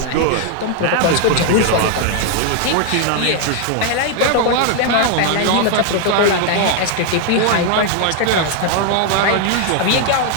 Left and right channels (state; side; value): different; both; correlation 0.00